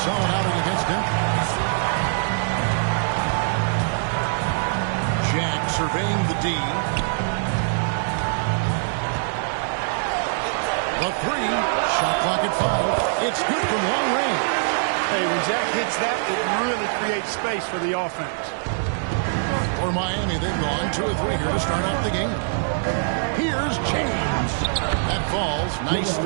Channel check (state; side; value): silent; left; digital silence